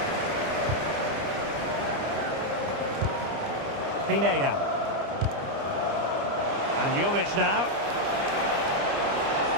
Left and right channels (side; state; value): left; late; 29 ms